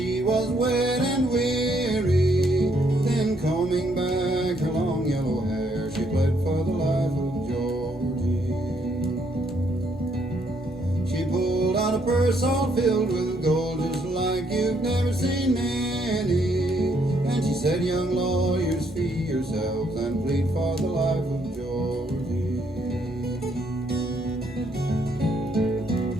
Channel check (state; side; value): normal; both; correlation 0.71